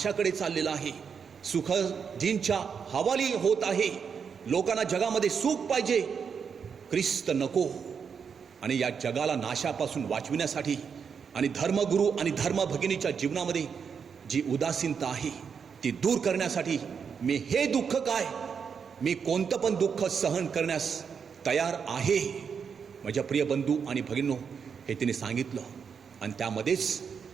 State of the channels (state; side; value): quieter; left; 6.5 dB